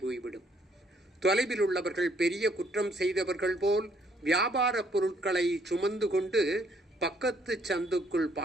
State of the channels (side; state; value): both; normal; correlation 0.67